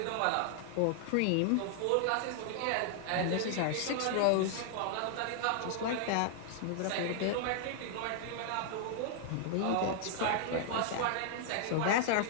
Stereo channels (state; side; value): different; both; correlation 0.00